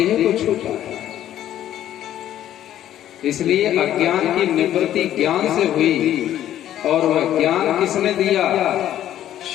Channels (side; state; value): right; quieter; 11.9 dB